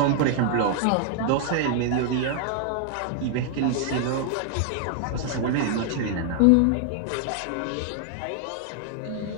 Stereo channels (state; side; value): different; both; correlation 0.00